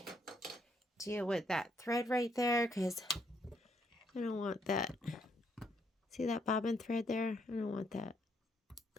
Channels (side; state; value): both; normal; correlation 0.72